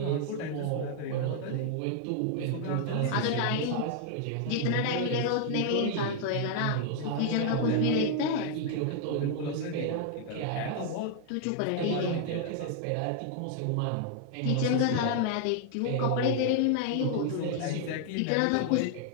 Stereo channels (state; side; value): different; both; correlation 0.00